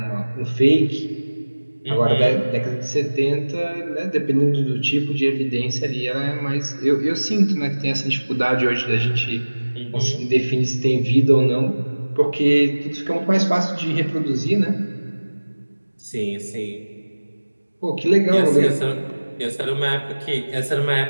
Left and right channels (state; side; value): inverted; both; correlation -1.00